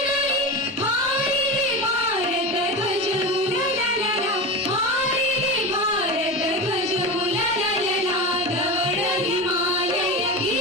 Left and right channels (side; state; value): both; normal; correlation 0.24